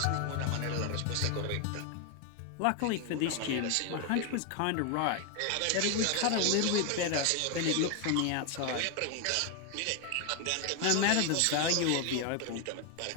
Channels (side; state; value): both; different; correlation 0.01